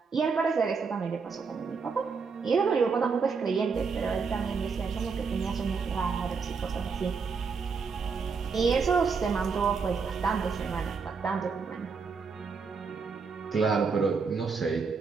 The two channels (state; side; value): quieter; left; 5.2 dB